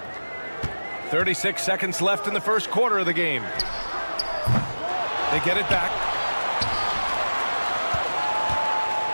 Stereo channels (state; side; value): inverted; both; correlation -1.00